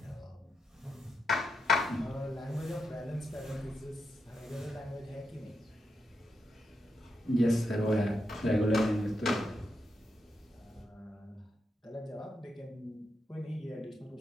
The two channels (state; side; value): normal; both; correlation 0.85